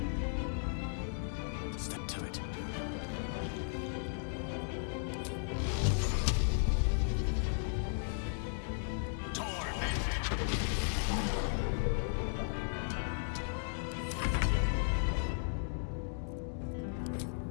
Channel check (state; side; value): silent; right; digital silence